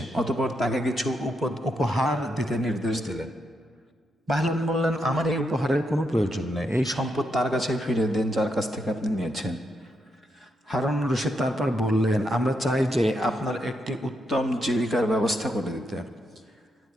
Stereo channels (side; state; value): both; normal; correlation 0.81